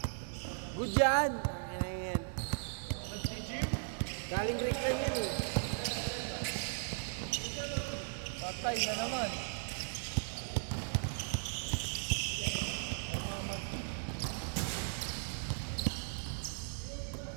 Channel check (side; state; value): left; silent; digital silence